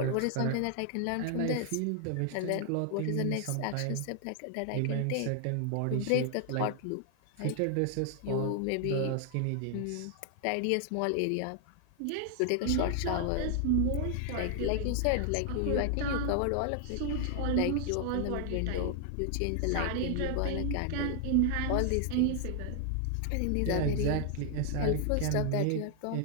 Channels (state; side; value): different; both; correlation 0.00